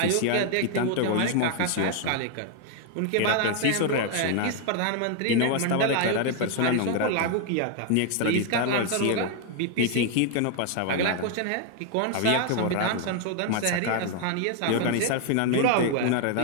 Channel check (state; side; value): different; both; correlation 0.00